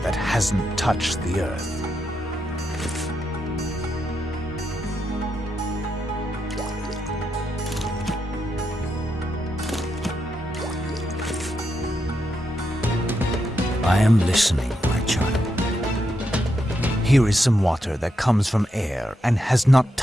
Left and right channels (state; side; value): normal; both; correlation 0.83